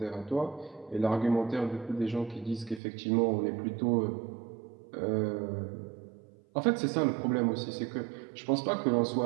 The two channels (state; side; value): drops out; left; at 2.8 s